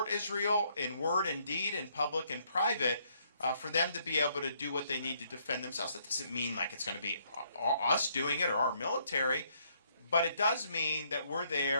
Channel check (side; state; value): both; inverted; correlation -0.70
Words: Israel in word and deed, in public and private, for them to be able to do what they need to defend themselves. That doesn't mean like it's going to be us doing it or our military. But it does mean that we're